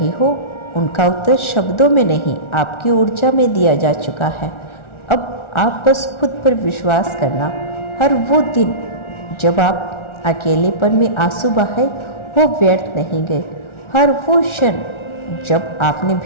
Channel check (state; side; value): late; right; 1.4 ms